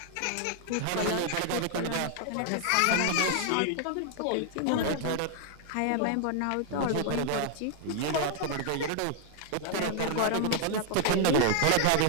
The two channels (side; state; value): both; different; correlation 0.00